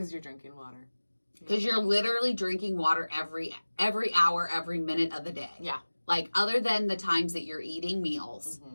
you're drinking water. Because you're literally drinking water every hour, every minute of the day. Yeah. Like, other than the times that you're eating meals,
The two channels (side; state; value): both; inverted; correlation -1.00